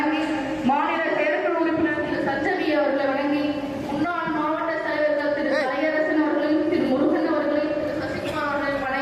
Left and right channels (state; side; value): identical; both; correlation 1.00